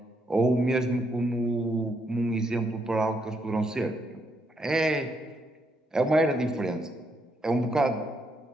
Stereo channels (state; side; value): normal; both; correlation 0.76